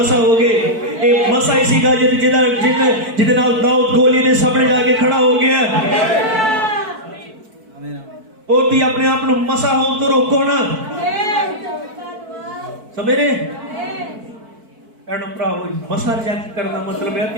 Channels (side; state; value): left; late; 4.5 ms